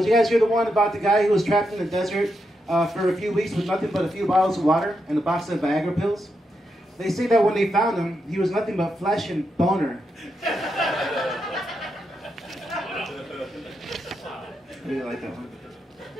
you guys hear the one about the guy who was trapped in the desert for a few weeks with nothing but a few bottles of water and a box of Viagra pills? They say that when they found him, he was nothing but flesh and boner. I really like that one.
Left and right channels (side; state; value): both; normal; correlation 0.84